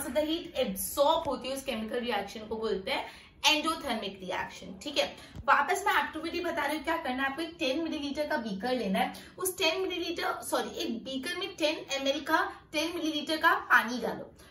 ज्यादा हीट एब्सॉर्ब होती है उस केमिकल रिएक्शन को बोलते हैं एंडोथर्मिक रिएक्शन, ठीक है। वापस मैं एक्टिविटी बता रही हूँ, क्या करना है आपको, एक 10 मिलीलीटर का बीकर लेना है। उस 10 मिलीलीटर एक बीकर में 10 ml का 10 मिलीलीटर का पानी डालो,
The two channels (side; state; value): both; identical; correlation 1.00